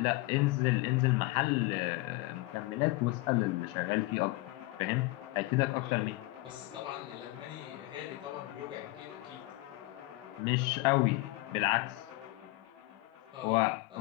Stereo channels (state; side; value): quieter; right; 20.9 dB